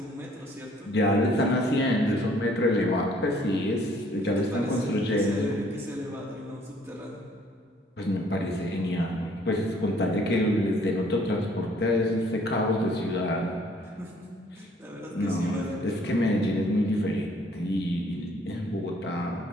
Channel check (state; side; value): normal; both; correlation 0.61